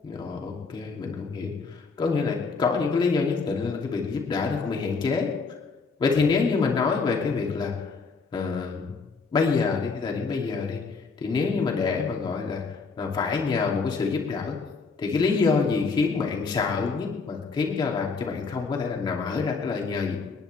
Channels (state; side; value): quieter; right; 4.6 dB